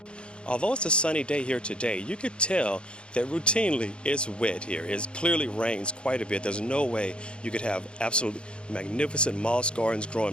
Although it's a sunny day here today, you could tell that routinely it's wet here. It clearly rains quite a bit. There's no way you could have absolutely magnificent moss gardens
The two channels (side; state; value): right; late; 0.055 ms